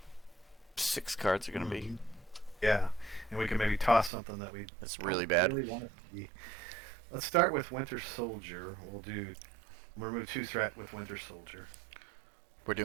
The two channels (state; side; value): drops out; left; at 4.1 s